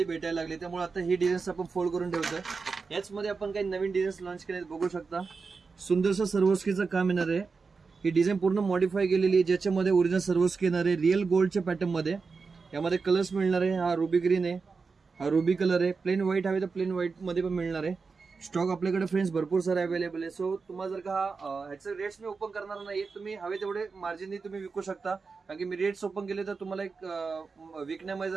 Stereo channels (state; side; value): quieter; left; 4.7 dB